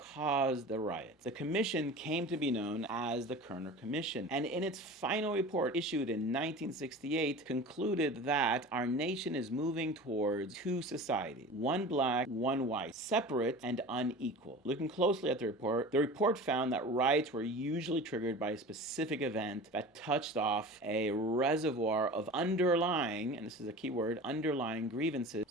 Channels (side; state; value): both; normal; correlation 0.36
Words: caused the riots. The commission came to be known as the Kerner Commission, and in its final report issued in 1968 concluded that our nation is moving towards two societies, one black, one white, separate and unequal. Looking closely at the report found that riots were usually triggered by a specific event that touched off a reservoir of underlying, and this is a key word, underlying grievances.